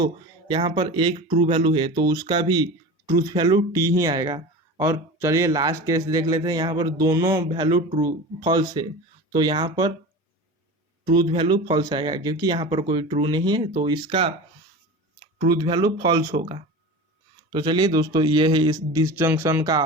यहाँ पर एक ट्रू वैल्यू है तो उसका भी ट्रूथ वैल्यू टी ही आएगा। और चलिए लास्ट केस देख लेते हैं, यहाँ पर दोनों वैल्यू ट्रू फॉल्स है, तो यहाँ पर ट्रूथ वैल्यू फॉल्स आएगा, क्योंकि यहाँ पर कोई ट्रू नहीं है, तो इसका ट्रूथ वैल्यू फॉल्स होगा। तो चलिए दोस्तों ये है इस डिसजंक्शन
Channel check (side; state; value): both; normal; correlation 0.31